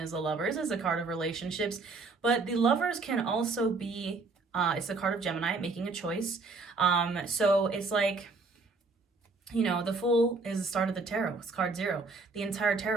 the Lovers, is a card of relationships. But the Lovers can also be, it's the card of Gemini, making a choice. So it's like, you know, the Fool is the start of the tarot. It's card 0. The entire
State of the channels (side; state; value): left; quieter; 3.9 dB